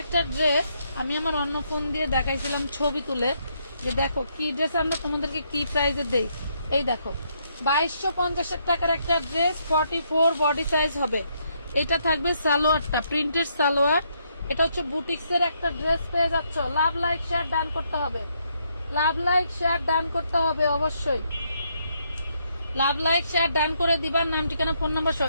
একটা ড্রেস আমি আমার অন্য ফোন দিয়ে দেখাইছিলাম ছবি তুলে, যে দেখো কি ড্রেস আমরা তোমাদেরকে কি প্রাইসে দেই। এই দেখো 2250 টাকার একটা ড্রেস, 44 বডি সাইজ হবে। এটা থাকবে সালোয়ারটা, প্রিন্টেড সালোয়ার। এটা হচ্ছে বুটিক্সের একটা ড্রেস পেয়ে যাচ্ছ। লাভ লাইক শেয়ার ডান করতে হবে, লাভ লাইক শেয়ার ডান করতে হবে, অবশ্যই লাভ লাইক শেয়ার ডান করে দিবার, নাম ঠিকানা ফোন নাম্বার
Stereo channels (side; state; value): both; inverted; correlation -0.75